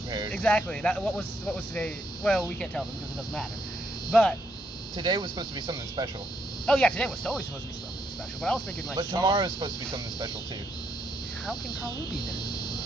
Exactly. What was today? Well, we can't tell them because it doesn't matter. But today was supposed to be something special. Oh yeah, today was totally supposed to be something special. But I was thinking like. But tomorrow's supposed to be something special too. How can Kalu be then?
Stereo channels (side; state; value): both; normal; correlation 0.76